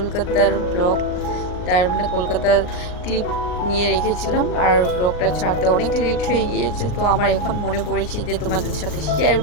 ব্লগ, তার মানে কলকাতার ক্লিপ নিয়ে রেখেছিলাম। আর ব্লগটা ছাড়তে অনেক লেট হয়ে গিয়েছে, তো আমার এখন মনে পড়েছে যে তোমাদের সাথে শেয়ার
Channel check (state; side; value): late; right; 39 ms